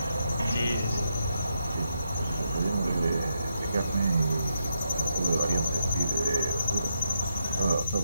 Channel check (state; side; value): inverted; both; correlation -0.82